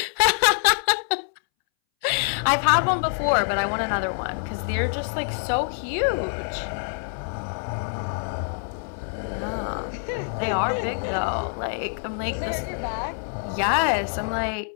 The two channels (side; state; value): right; silent; 62 dB below the other